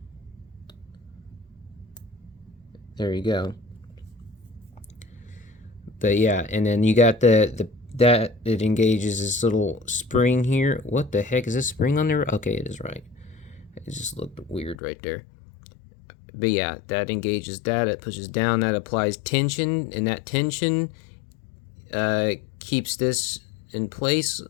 There you go. But yeah, and then you got that it engages this little spring here. What the heck is this spring on there? Okay, it is right. It just looked weird right there. But yeah, that engages that. It pushes down. That applies tension, and that tension keeps this in place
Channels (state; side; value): drops out; right; at 14.8 s